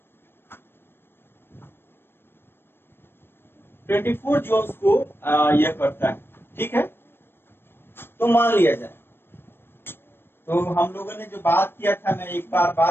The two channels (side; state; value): right; late; 0.11 ms